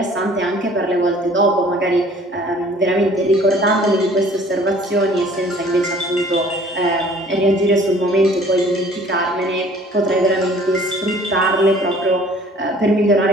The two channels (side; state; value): both; normal; correlation 0.53